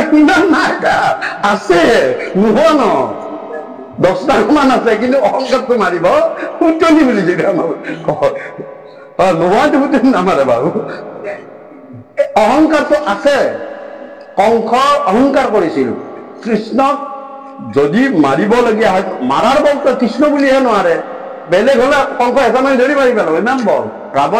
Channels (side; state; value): both; identical; correlation 1.00